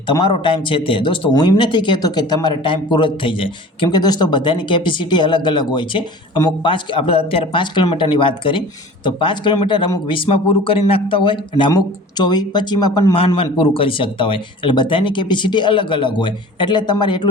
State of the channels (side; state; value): both; normal; correlation 0.42